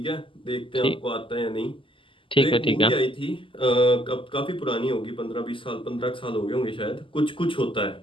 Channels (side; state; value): right; late; 0.25 ms